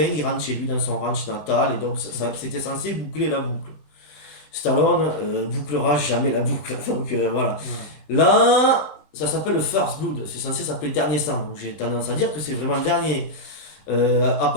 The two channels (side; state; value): right; late; 20 ms